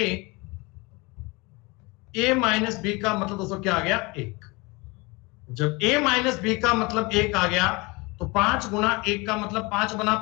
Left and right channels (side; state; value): right; quieter; 25.8 dB